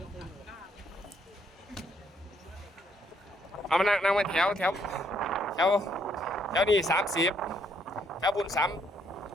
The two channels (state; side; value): normal; both; correlation 0.70